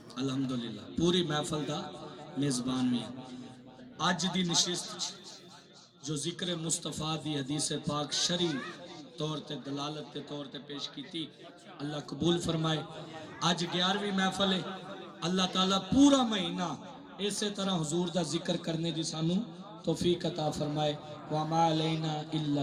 الحمدللہ پوری محفل دا میزبان بھی ہاں. اج دی نشست جو ذکر مصطفیٰ دی حدیث پاک شرعی طور تے دلالت کے طور تے پیش کیتی، اللہ قبول فرمائے. اج 11ویں محفل ہے. اللہ تعالیٰ پورا مہینہ اسی طرح حضور دا ذکر کرنے دی سانو توفیق عطا فرمائے. وَمَا عَلَيْنَا إِلَّا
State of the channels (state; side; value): identical; both; correlation 1.00